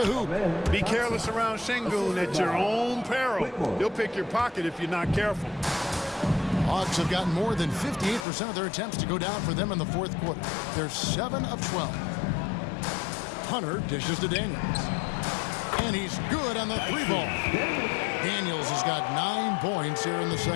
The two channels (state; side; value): drops out; right; at 8.2 s